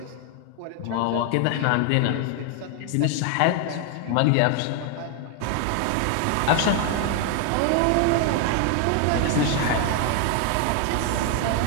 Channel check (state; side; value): different; both; correlation 0.00